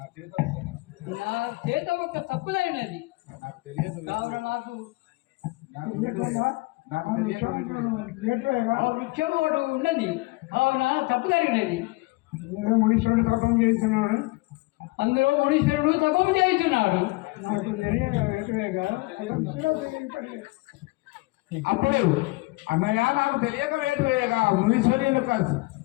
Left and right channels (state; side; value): quieter; right; 23.3 dB